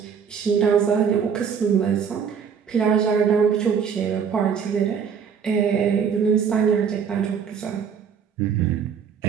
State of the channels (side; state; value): left; quieter; 6.9 dB